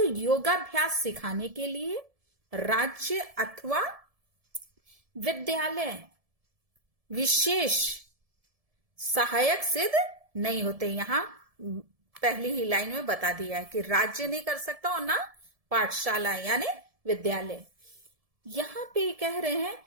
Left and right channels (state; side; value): late; left; 1.7 ms